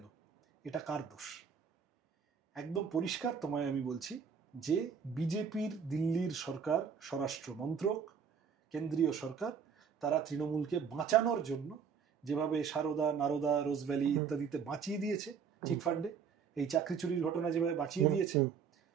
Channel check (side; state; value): left; quieter; 6.7 dB